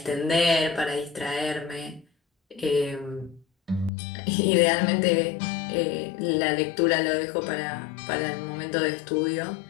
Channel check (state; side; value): drops out; right; at 3.9 s